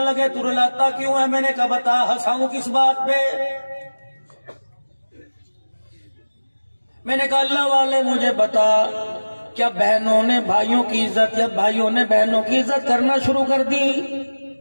لگے تو رلاتا کیوں ہے؟ میں نے کہا بتا، ہنساؤں کس بات پہ؟ میں نے کہا اللہ والے مجھے بتا، کیا بہنوں نے بھائیوں کی عزت یا بھائیوں نے بہنوں کی عزت کرنا شروع کر دی؟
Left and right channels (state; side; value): inverted; both; correlation -1.00